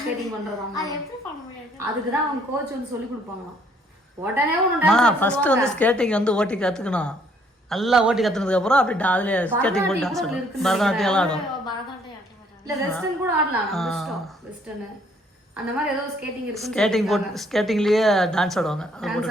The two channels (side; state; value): both; normal; correlation 0.64